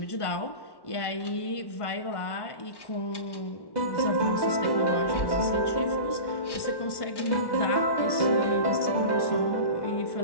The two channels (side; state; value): right; late; 1.1 ms